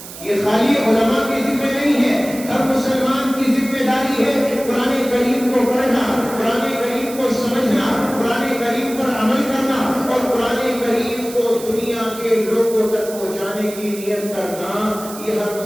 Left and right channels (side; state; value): right; noise; hiss, 14 dB below the sound